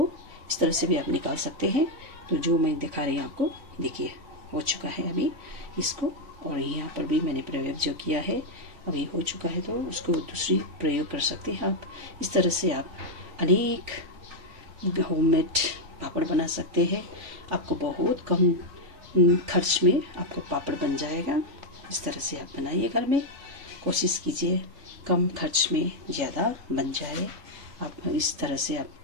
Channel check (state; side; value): late; left; 3.5 ms